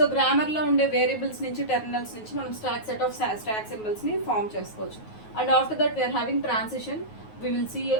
grammar lo unde variables nunchi terminals nunchi manam set of stack symbols ni form chesukochu. And after that we are having transition, we will see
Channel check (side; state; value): right; late; 9.4 ms